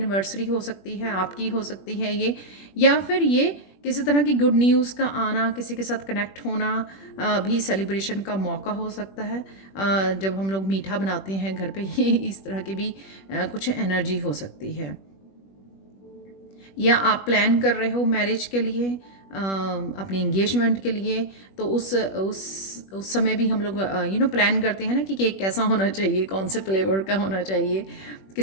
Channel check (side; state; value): right; late; 21 ms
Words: हो सकती है, आपकी हो सकती है ये, या फिर ये किसी तरह की गुड न्यूज़ का आना, किसी के साथ कनेक्ट होना भी सेलिब्रेशन का मौका हो सकता है। जब हम लोग मीठा बनाते हैं घर पे, ये इस तरह की भी कुछ एनर्जी हो सकती है। या आप प्लान कर रहे हो मैरिज के लिए, अपनी इंगेजमेंट के लिए, तो उस समय भी हम लोग प्लान करते हैं ना कि केक कैसा होना चाहिए, कौन से फ्लेवर का होना चाहिए,